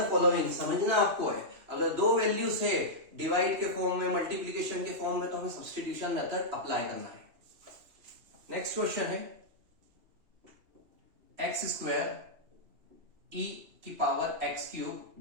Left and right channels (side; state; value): left; late; 2.8 ms